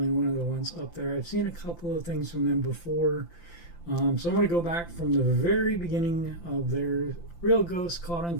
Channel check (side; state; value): right; late; 5.8 ms